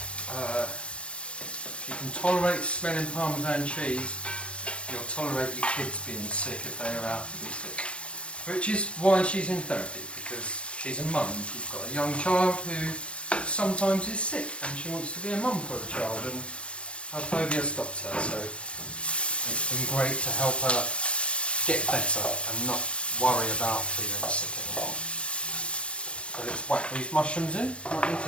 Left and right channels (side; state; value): right; late; 0.060 ms